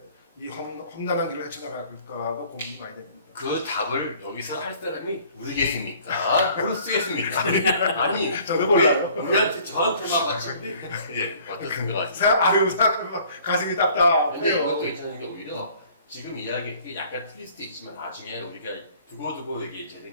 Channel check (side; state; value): both; inverted; correlation -0.54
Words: 이 험난한 길을 헤쳐나갈까가 고민이 많이 됩니다. 그 답을 여기서 할 사람이 모르겠습니까? 모를 수 있습니까? 아니 저도 몰라요. 우리한테 저한테만 맞추는데 예 어떻게 생각하세요? 생각하면 가슴이 답답해요. 근데 이것도 괜찮은 게 오히려 지금 이야기 약간 틀릴 수도 있지만 나중에 우리가 두고두고 이게